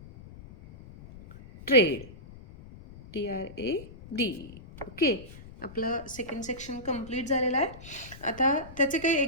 trade. TRADE. Okay, आपलं सेकंड सेक्शन कंप्लीट झालेलं आहे. आता त्याचे काही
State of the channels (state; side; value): noise; left; rumble, 17 dB below the sound